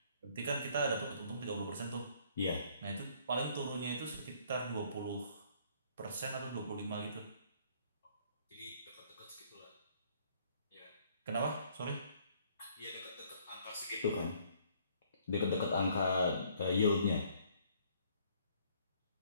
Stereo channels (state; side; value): inverted; both; correlation -0.62